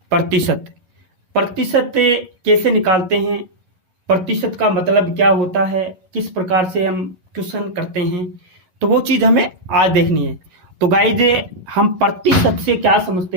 प्रतिशत। प्रतिशत कैसे निकालते हैं, प्रतिशत का मतलब क्या होता है, किस प्रकार से हम क्वेश्चन करते हैं, तो वो चीज़ हमें आज देखनी है। तो गाइज, हम प्रतिशत से क्या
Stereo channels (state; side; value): late; left; 11 ms